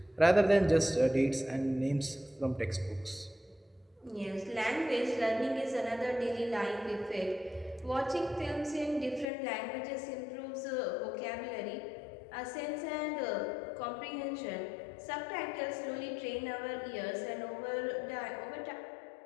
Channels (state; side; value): drops out; right; at 9.2 s